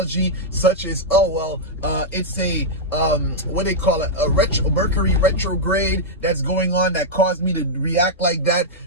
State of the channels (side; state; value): both; normal; correlation -0.06